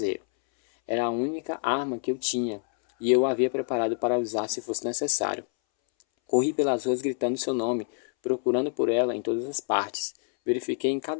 Era a única arma que eu tinha, e eu a havia preparado para usar se fosse necessário. Corri pelas ruas gritando seu nome, procurando por ela em todas as partes. Verifiquei em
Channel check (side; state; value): right; silent; 60 dB below the other